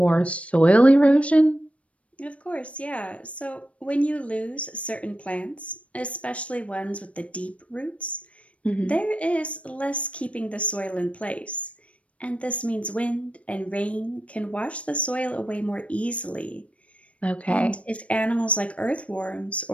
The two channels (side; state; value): right; late; 0.063 ms